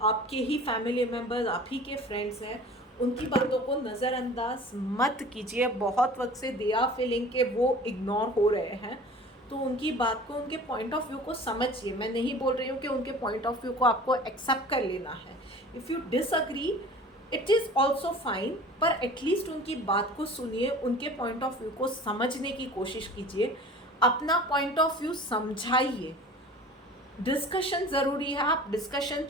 आपके ही फैमिली मेम्बर्स, आप ही के फ्रेंड्स हैं, उनकी बातों को नज़रअंदाज मत कीजिए। बहुत वक्त से दे आर फीलिंग के वो इग्नोर हो रहे हैं, तो उनकी बात को, उनके पॉइंट ऑफ व्यू को समझिए। मैं नहीं बोल रही हूँ कि उनके पॉइंट ऑफ व्यू को आपको एक्सेप्ट कर लेना है। If you disagree it is also fine, पर एटलीस्ट उनकी बात को सुनिए, उनके पॉइंट ऑफ व्यू को समझने की कोशिश कीजिए, अपना पॉइंट ऑफ व्यू समझाइए। डिस्कशन ज़रूरी है, आप डिस्कशन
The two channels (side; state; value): both; normal; correlation 0.43